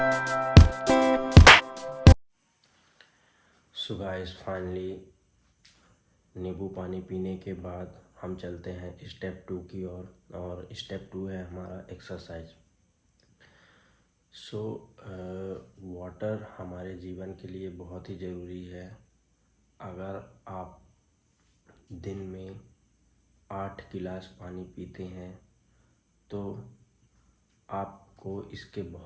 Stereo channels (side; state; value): both; identical; correlation 1.00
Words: गाइस, फाइनली नींबू पानी पीने के बाद हम चलते हैं स्टेप 2 की ओर और स्टेप 2 है हमारा एक्सरसाइज। वाटर हमारे जीवन के लिए बहुत ही ज़रूरी है। अगर आप दिन में 8 गिलास पानी पीते हैं तो आपको इसके